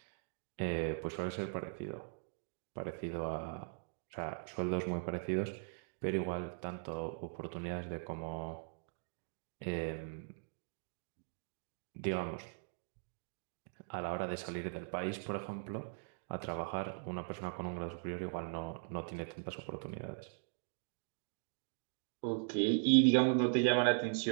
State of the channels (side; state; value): left; silent; digital silence